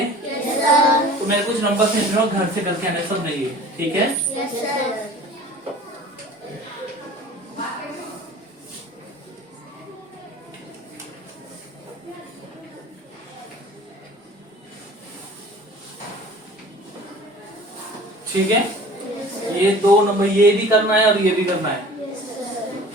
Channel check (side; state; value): both; normal; correlation 0.44